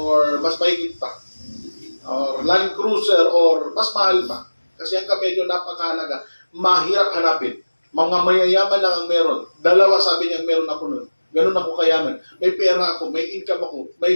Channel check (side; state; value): both; inverted; correlation -1.00